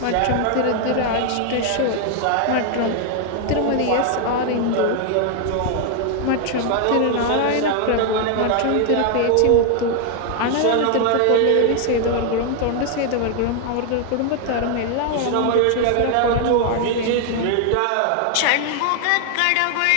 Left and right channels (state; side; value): different; both; correlation 0.00